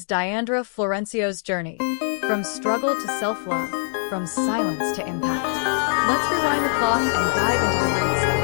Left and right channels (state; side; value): silent; right; digital silence